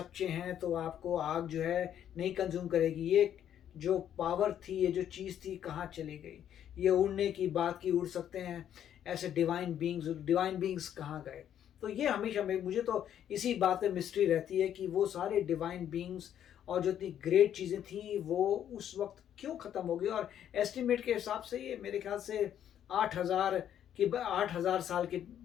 हैं तो आपको आग जो है नहीं कंज्यूम करेगी, ये जो पावर थी, ये जो चीज़ थी, कहाँ चली गई। ये उड़ने की बात की, उड़ सकते हैं ऐसे डिवाइन बींग्स कहाँ गए। तो ये हमेशा मुझे तो इसी बात में मिस्ट्री रहती है कि वो सारे डिवाइन बींग्स और जो इतनी ग्रेट चीज़ें थी वो उस वक्त क्यों ख़त्म हो गई। और एस्टिमेट के हिसाब से ये मेरे ख्याल से 8,000 साल की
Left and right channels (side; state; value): right; quieter; 10.1 dB